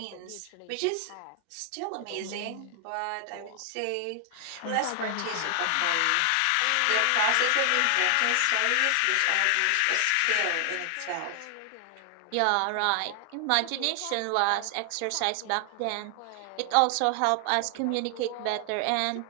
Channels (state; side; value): different; both; correlation 0.00